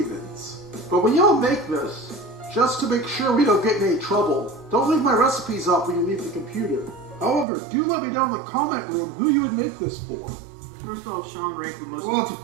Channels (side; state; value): left; drops out; at 7.5 s